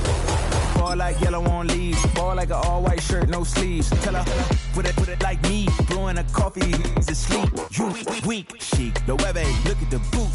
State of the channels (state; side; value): identical; both; correlation 1.00